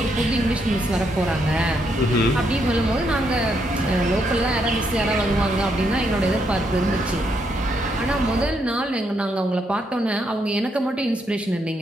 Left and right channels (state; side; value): normal; both; correlation 0.77